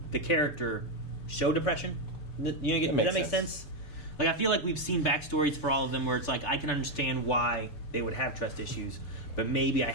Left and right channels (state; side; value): late; right; 6.8 ms